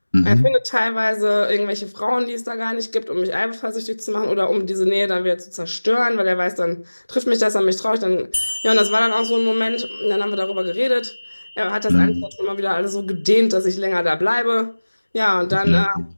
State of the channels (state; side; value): inverted; both; correlation -1.00